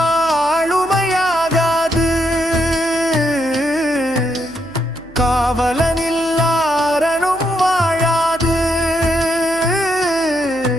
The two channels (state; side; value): noise; right; hum, 23 dB below the sound